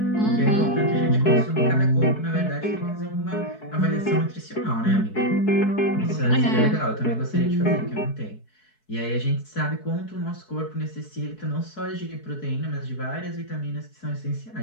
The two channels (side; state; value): right; late; 4.6 ms